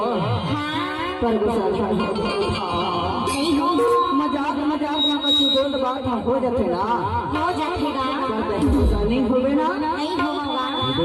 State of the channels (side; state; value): both; identical; correlation 1.00